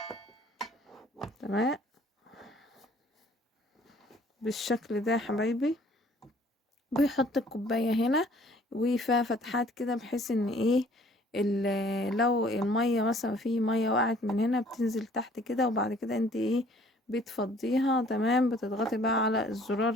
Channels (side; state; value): both; normal; correlation 0.57